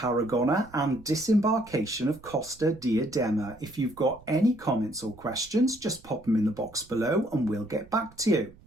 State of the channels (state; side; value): noise; right; rumble, 24 dB below the sound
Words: and disembarkation of Costa Diadema. If you've got any comments or questions, just pop them in the box below and we'll get back to you.